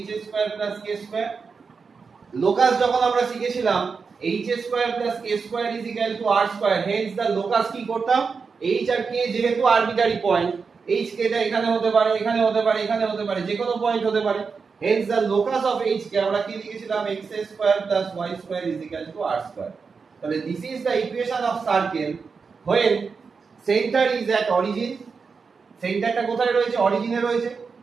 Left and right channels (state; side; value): quieter; left; 5.2 dB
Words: square k square. Locus যখন আমরা শিখেছিলাম h square k square r square, hence the locus কি করতাম, h আর k যেহেতু আরবিটারি পয়েন্ট, h k টা এখানে হতে পারে, এখানে হতে পারে, এখানে হতে পারে, যে কোনো পয়েন্ট হতে পারে। Hence the locus of h কে আমরা কি লিখেছিলাম, x square y square r square. তাহলে this is the equation of circle when center is at origin। সেন্টারটা কোথায় রয়েছে, অরিজিনে রয়েছে,